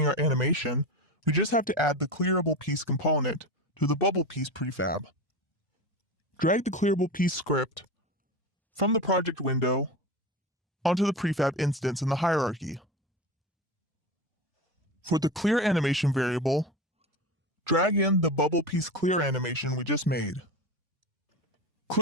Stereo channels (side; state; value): both; normal; correlation 0.25